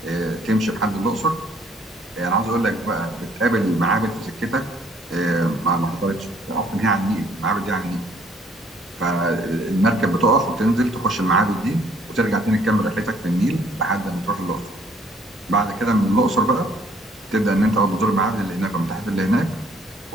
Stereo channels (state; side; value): normal; both; correlation 0.62